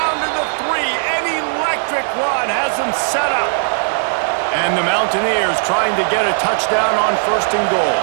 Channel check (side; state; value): left; silent; digital silence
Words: to the 3. An electric run has him set up. And the Mountaineers trying to get a touchdown on 1st and goal.